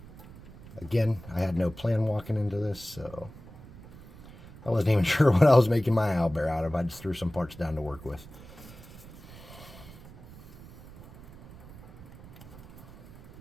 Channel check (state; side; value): noise; right; rumble, 18 dB below the sound